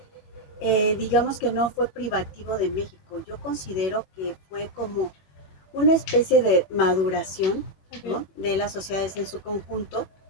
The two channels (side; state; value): right; late; 21 ms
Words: digamos que no fue privativo de México. Yo considero que fue como una especie de maduración, Okay. ¿no?, de las sociedades en su conjunto